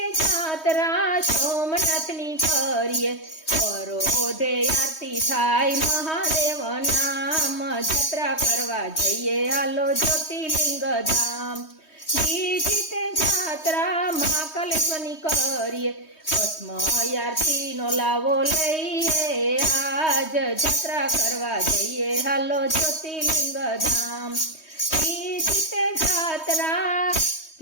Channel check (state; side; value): late; right; 3.2 ms